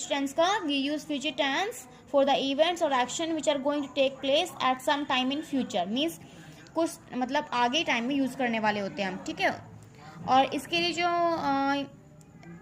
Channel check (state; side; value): identical; both; correlation 1.00